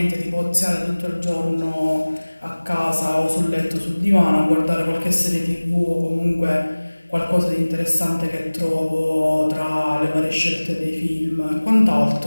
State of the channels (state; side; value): inverted; both; correlation -1.00